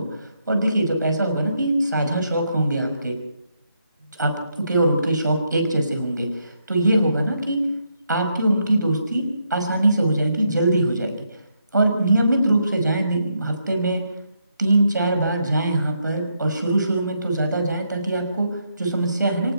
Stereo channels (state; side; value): inverted; both; correlation -0.78